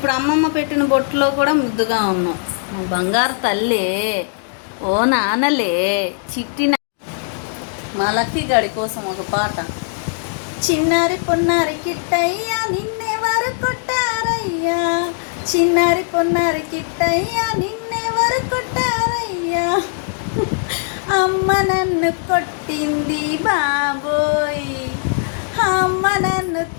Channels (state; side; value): silent; right; digital silence